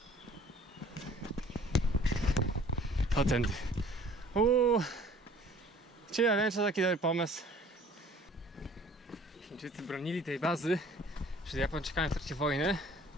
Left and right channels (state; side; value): normal; both; correlation 0.52